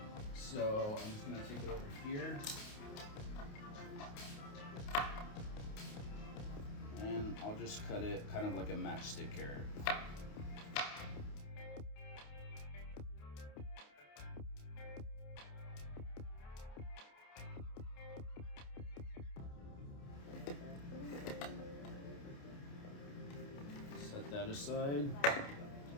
So I'm just gonna take it over here. And I'll just cut it kind of like a matchstick carrot. Set that aside.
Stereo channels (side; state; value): right; late; 28 ms